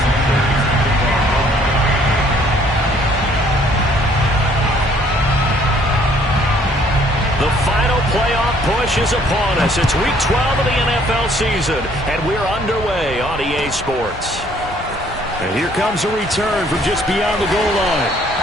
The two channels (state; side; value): normal; both; correlation 0.61